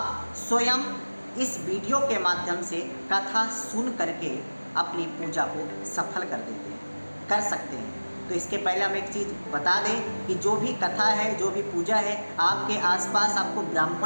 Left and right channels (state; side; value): inverted; both; correlation -1.00